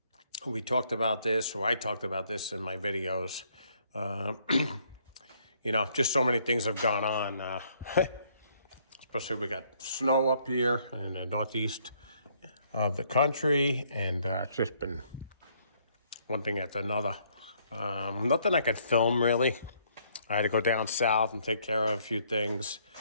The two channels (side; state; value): both; inverted; correlation -0.67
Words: We talked about this, or I talked about this in my videos. Uh, just so many things have gone on. Especially we got snow up here in the northeast of the country, and it's just been one thing after another. Nothing I could film really. I had to go down south and take care of a few things.